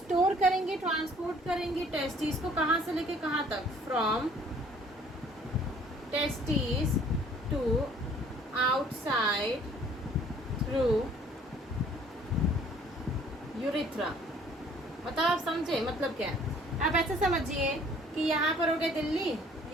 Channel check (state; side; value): normal; both; correlation 0.56